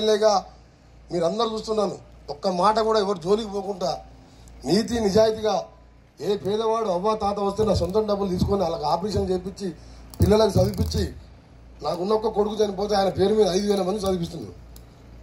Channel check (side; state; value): both; identical; correlation 1.00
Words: మీరందరూ చూస్తున్నాను. ఒక్క మాట కూడా ఎవరు జోలికి పోకుండా నీతి నిజాయితీగా ఏ పేదవాడు అవ్వ తాత వస్తే నా సొంతం డబ్బులు తీసుకొని వాళ్ళకి ఆపరేషన్ చేయించి పిల్లలకు చదివించి నాకున్న ఒక్క కొడుకు చనిపోతే ఆయన పేరు మీద 5,000 మంది చదివిస్తున్నాను.